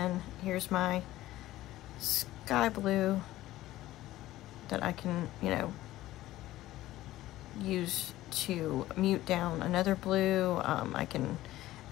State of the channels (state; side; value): quieter; right; 15.6 dB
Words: here's my sky blue that I can, you know, use to mute down another blue. I can